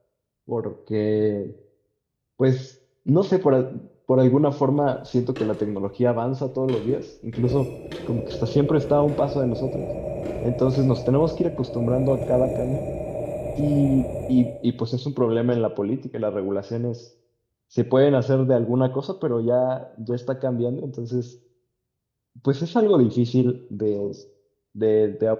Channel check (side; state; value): both; identical; correlation 1.00